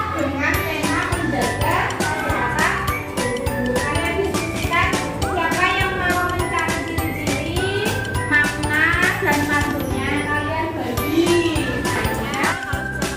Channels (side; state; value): both; identical; correlation 1.00